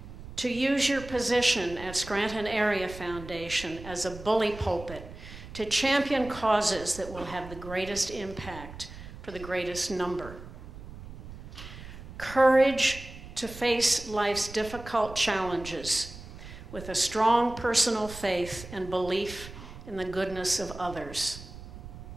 to use your position at Scranton Area Foundation as a bully pulpit to champion causes that will have the greatest impact for the greatest number. Courage to face life's difficult challenges with a strong personal faith and belief in the goodness of others.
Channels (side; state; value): right; noise; rumble, 14 dB below the sound